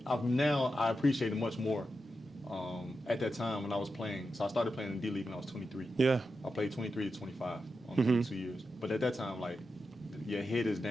appreciate it much more. At that time when I was playing, so I started playing in the D League when I was 23. Yeah. I played 23 to 25 on 2 years. But at that time, like, your head is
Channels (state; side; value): normal; both; correlation 0.89